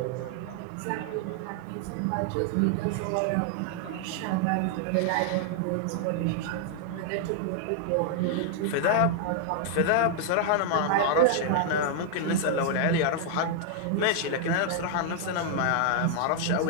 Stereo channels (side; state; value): both; different; correlation 0.00